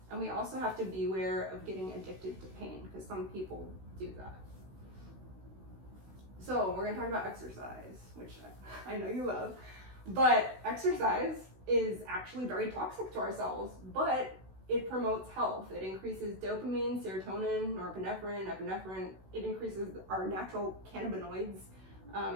And we also have to be aware of getting addicted to pain, because some people do that. So we're gonna talk about exercise, which I know you love, but exercise is actually very toxic to our cells, but it promotes health. It increases dopamine, serotonin, norepinephrine, epinephrine. It increases our natural cannabinoids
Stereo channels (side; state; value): left; late; 16 ms